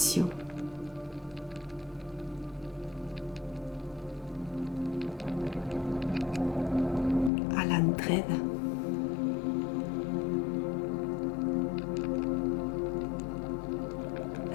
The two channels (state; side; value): drops out; right; at 7.3 s